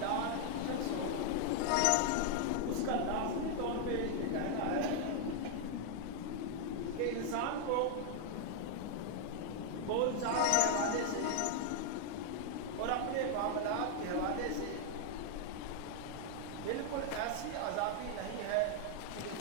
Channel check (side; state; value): both; different; correlation 0.00